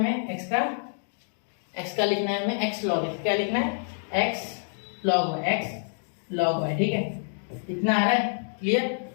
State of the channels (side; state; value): right; silent; digital silence